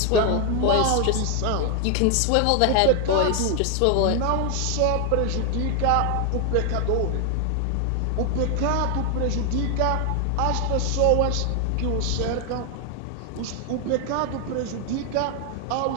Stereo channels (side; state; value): both; different; correlation 0.00